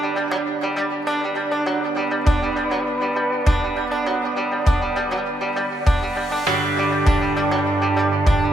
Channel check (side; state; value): both; normal; correlation 0.79